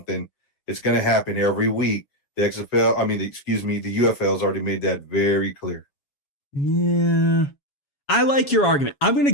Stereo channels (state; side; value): late; right; 7.2 ms